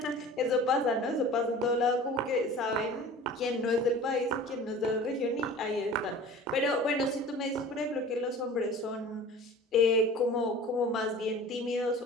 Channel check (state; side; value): normal; both; correlation 0.41